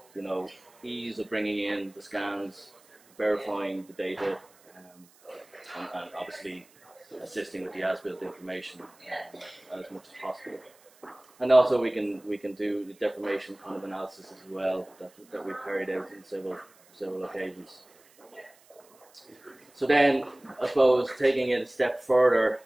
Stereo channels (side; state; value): right; noise; hiss, 29 dB below the sound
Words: ease of bringing in the scans, verifying the data, and obviously assisting with the as-built information as much as possible. And also we can do the deformation kind of analysis as well that we've carried out in several occasions. So then, I suppose, taking it a step further,